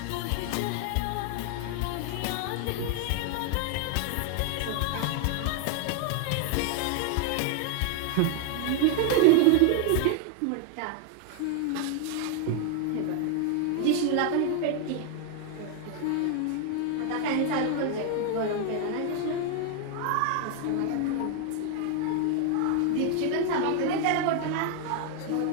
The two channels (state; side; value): different; both; correlation 0.00